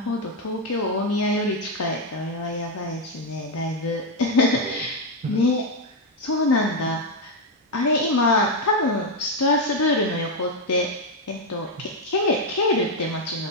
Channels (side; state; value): both; normal; correlation 0.04